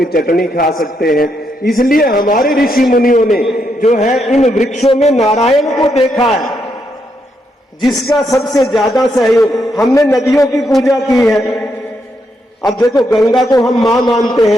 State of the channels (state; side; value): normal; both; correlation 0.79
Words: चटनी खा सकते हैं। इसलिए हमारे ऋषि मुनियों ने जो है इन वृक्षों में नारायण को देखा है, जिसका सबसे ज्यादा सहयोग। हमने नदियों की पूजा की है। अब देखो, गंगा को हम मां मानते